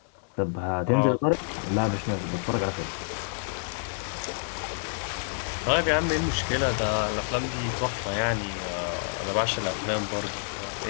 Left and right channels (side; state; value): right; silent; digital silence